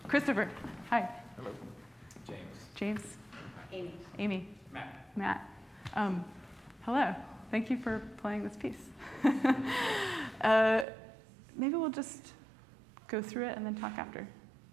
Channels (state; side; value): drops out; left; at 10.9 s